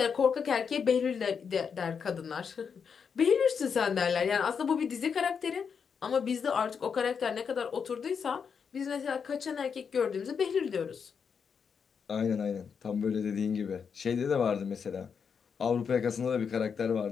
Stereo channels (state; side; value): quieter; right; 6.4 dB